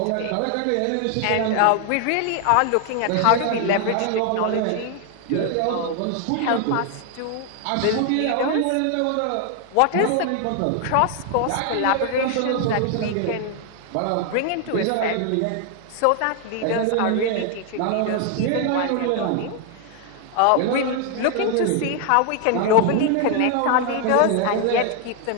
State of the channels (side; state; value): both; different; correlation 0.00